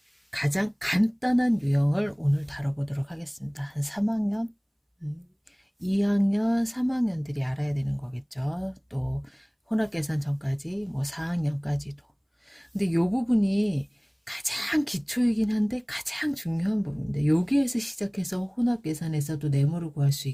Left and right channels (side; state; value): both; identical; correlation 1.00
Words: 가장 간단한 유형을 오늘 다뤄보도록 하겠습니다. 한 3학년, 2학년, 3학년들이 알아야 되는 거겠죠. 또 혼합계산 전까지 뭐 4학년까지도. 근데 요 부분이 가장 기초이긴 한데 가장 중요한 부분인데 여기에서 시작해서 혼합 계산에서도 네모를 구할 수